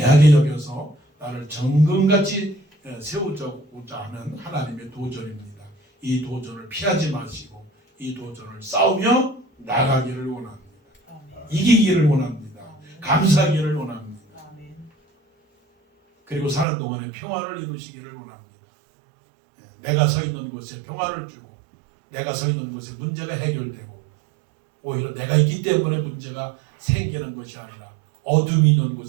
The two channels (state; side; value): drops out; left; at 16.7 s